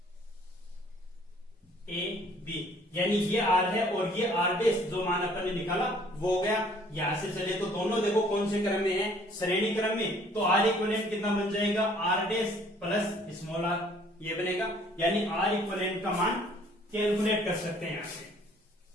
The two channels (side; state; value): both; normal; correlation 0.58